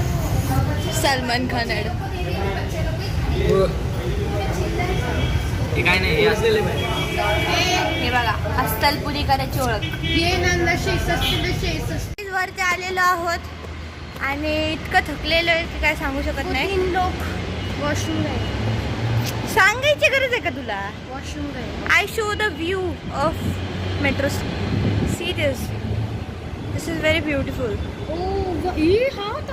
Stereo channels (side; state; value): both; identical; correlation 1.00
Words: सलमान खान ॲड. हे काय नाही हे असलेलं हे बघा अस्सल पुरी करायची ओळख. ये नांदा 66 वरती आलेलो आहोत आणि इतकं थकलेलो आहे की काय सांगू शकत नाही. 3 लोग वॉशरूम गए. सांगायची गरज आहे का तुला. वॉशरूम गए. I show the view of metro. See this. This is very beautiful. ओ ही हा